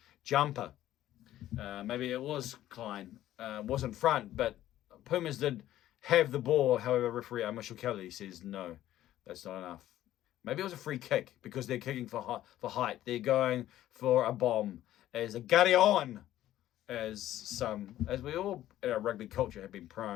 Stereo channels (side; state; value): right; quieter; 13.4 dB